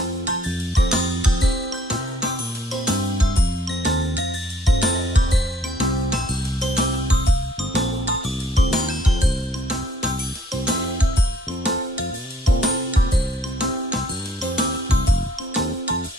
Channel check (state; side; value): normal; both; correlation 0.61